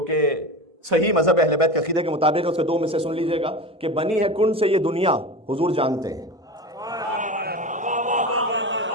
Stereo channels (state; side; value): normal; both; correlation 0.28